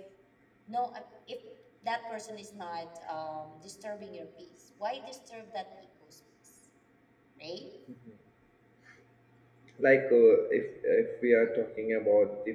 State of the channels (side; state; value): both; identical; correlation 1.00